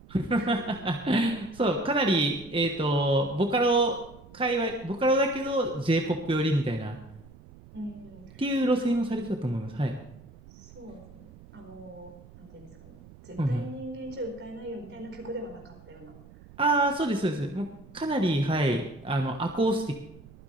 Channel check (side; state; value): right; noise; rumble, 21 dB below the sound